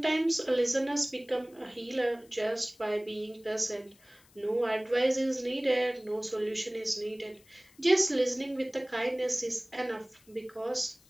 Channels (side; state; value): left; noise; hiss, 29 dB below the sound